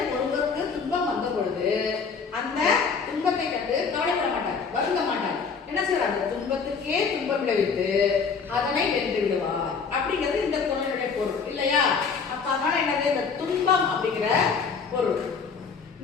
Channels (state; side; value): quieter; right; 5.5 dB